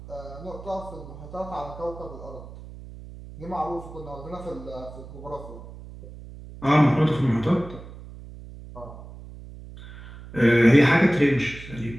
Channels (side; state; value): right; noise; hum, 15 dB below the sound